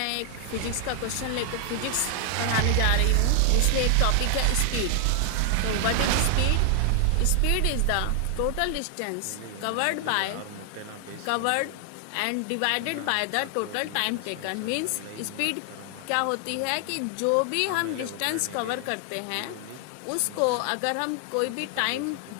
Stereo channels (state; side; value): different; both; correlation 0.00